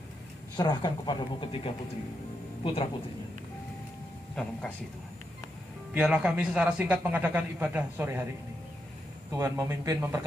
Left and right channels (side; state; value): both; normal; correlation 0.83